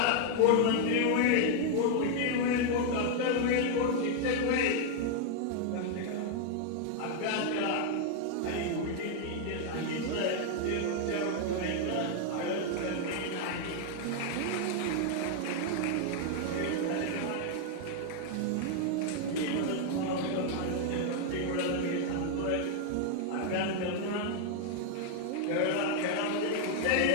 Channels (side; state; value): both; different; correlation 0.00